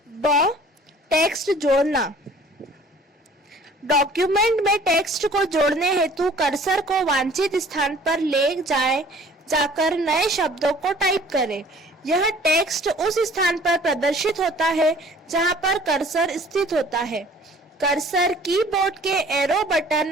टेक्स्ट जोड़ना, डॉक्यूमेंट में टेक्स्ट को जोड़ने हेतु कर्सर को वांछित स्थान पर ले जाकर नए शब्दों को टाइप करें। यह टेक्स्ट उस स्थान पर प्रदर्शित होता है जहां पर कर्सर स्थित होता है। कर्सर कीबोर्ड के एरो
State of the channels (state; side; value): normal; both; correlation 0.51